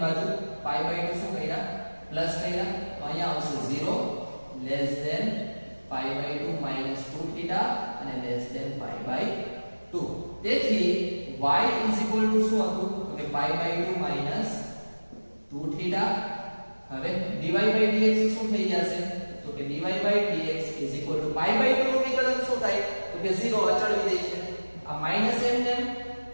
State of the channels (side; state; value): both; inverted; correlation -1.00